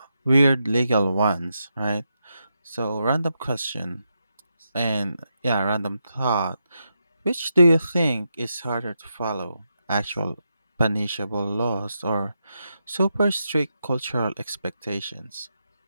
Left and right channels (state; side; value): inverted; both; correlation -0.84